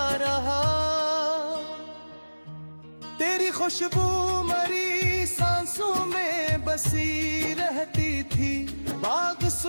रहा। तेरी खुशबू मरी सांसों में बसी रहती थी, बाग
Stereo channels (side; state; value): both; inverted; correlation -1.00